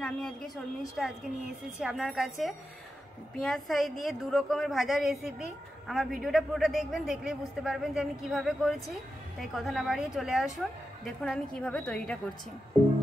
আমি আজকে শর্মিষ্ঠা নিয়ে এসেছি আপনার কাছে পেঁয়াজ ছাই দিয়ে দু রকমের ভাজা রেসিপি। আমার ভিডিওটা পুরোটা দেখবেন, দেখলেই বুঝতে পারবেন যে আমি কিভাবে করেছি। তাই কথা না বাড়িয়ে চলে আসুন, দেখুন আমি কিভাবে তৈরিটা করছি।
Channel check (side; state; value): both; normal; correlation 0.89